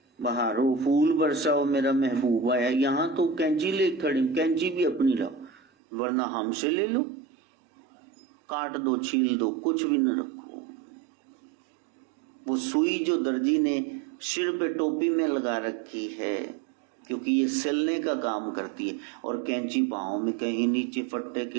बहारो फूल बरसाओ मेरा महबूब आया, यहां तो कैंची ले खड़ी, कैंची भी अपनी लाओ वरना हमसे ले लो, काट दो छील दो, कुछ भी न रखो। वो सुई जो दर्जी ने सिर पे टोपी में लगा रखी है, क्योंकि ये सिलने का काम करती है, और कैंची पांव में कहीं नीचे फट्टे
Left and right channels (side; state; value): left; drops out; at 5.6 s